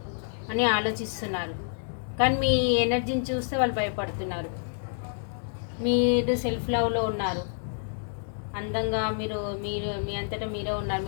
అని ఆలోచిస్తున్నారు. కానీ మీ ఎనర్జీని చూస్తే వాళ్ళు భయపడుతున్నారు. మీరు సెల్ఫ్ లవ్లో ఉన్నారు, అందంగా మీరు మీ అంతటా మీరే ఉన్నారు.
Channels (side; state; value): right; silent; digital silence